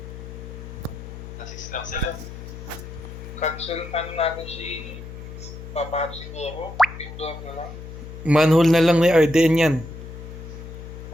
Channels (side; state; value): left; noise; hum, 11 dB below the sound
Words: Nasis lang sila. Cancel natin si Papa siguro. Indoor na lang. Manhole na lang ni RDN yan.